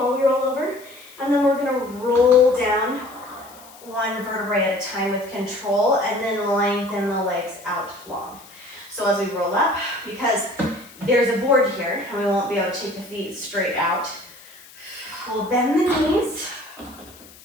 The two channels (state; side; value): noise; left; hiss, 22 dB below the sound